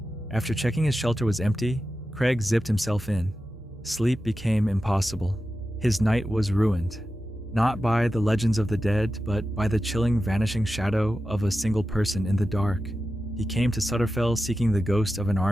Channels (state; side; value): normal; both; correlation 0.92